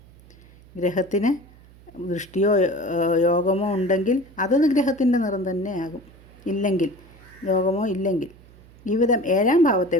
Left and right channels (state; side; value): noise; right; hum, 24 dB below the sound